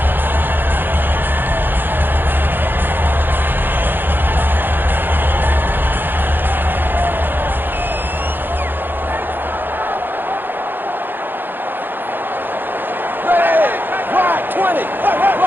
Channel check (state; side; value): late; left; 0.094 ms